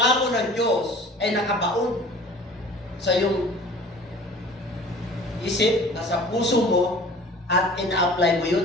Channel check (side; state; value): both; normal; correlation 0.45